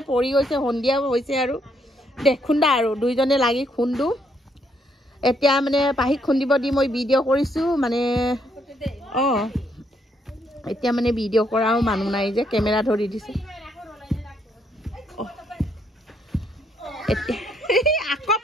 পৰি গৈছে সন্ধিয়া হৈছে আৰু খুন্দা আৰু দুইজনে লাগি খুন্দো এতিয়া মানে পাহিক খুন্দিব দি মই ভিডিঅ' কৰিছো মানে এতিয়া মানে ভিডিঅ' কৰাও মানুহ নাই যে কেমেৰা ধৰি দিছে আকৌ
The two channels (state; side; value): normal; both; correlation 0.72